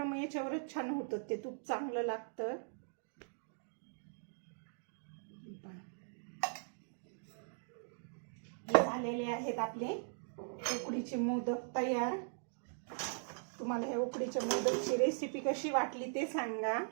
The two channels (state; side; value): silent; left; digital silence